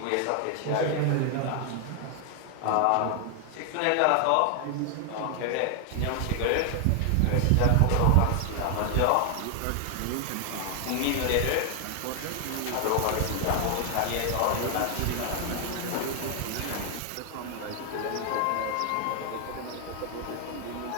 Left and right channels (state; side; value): different; both; correlation 0.00